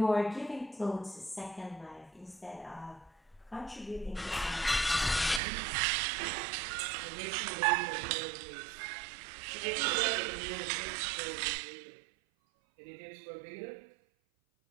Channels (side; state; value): left; drops out; at 5.4 s